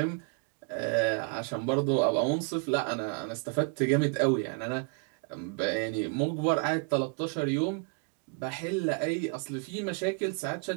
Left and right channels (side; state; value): left; quieter; 37.7 dB